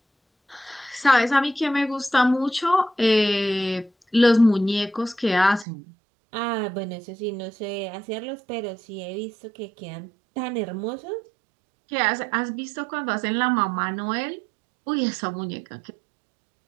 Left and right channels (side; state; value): left; drops out; at 5.7 s